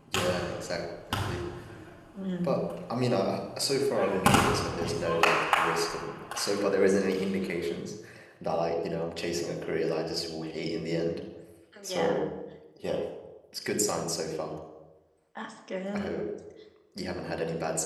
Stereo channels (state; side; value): identical; both; correlation 1.00